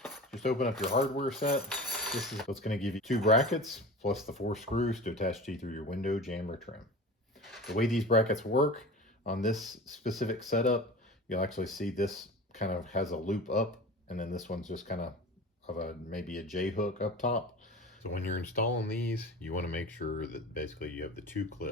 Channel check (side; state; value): both; normal; correlation 0.34